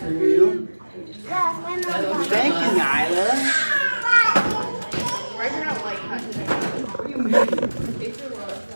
you. Yeah, my mom. Thank you, Nyla. Ryker don't like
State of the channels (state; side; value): inverted; both; correlation -1.00